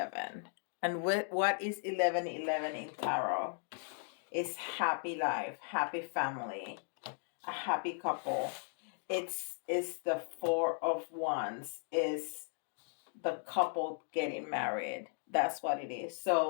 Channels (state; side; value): silent; right; 53 dB below the other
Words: And what is 1111 in tarot? It's happy life, happy family, a happy couple. It's the 4 of Wands, is the couple getting married. That's what it is.